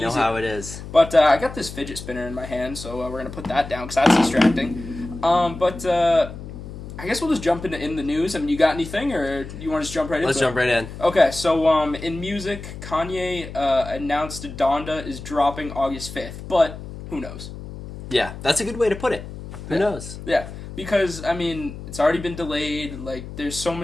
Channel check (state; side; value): noise; left; hum, 11 dB below the sound